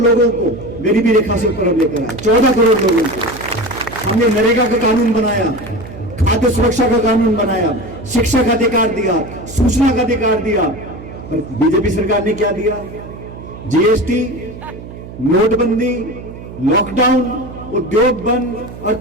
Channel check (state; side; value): noise; right; hum, 14 dB below the sound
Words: को गरीबी रेखा से ऊपर लेकर आया। 14 करोड़ लोगों को हमने नरेगा का कानून बनाया, खाद्य सुरक्षा का कानून बनाया, शिक्षा का अधिकार दिया, सूचना का अधिकार दिया। और बीजेपी सरकार ने क्या दिया? जीएसटी, नोटबंदी, लॉकडाउन, उद्योग बंद,